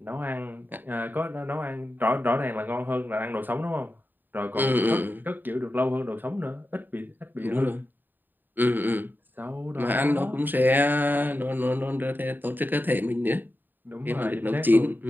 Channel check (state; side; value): late; left; 0.091 ms